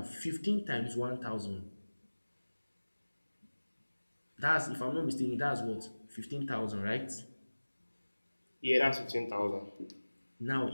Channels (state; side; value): inverted; both; correlation -1.00